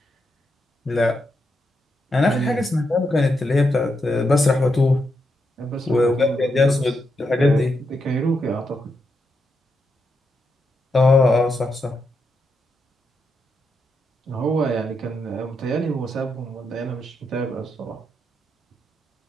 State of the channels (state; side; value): normal; both; correlation 0.83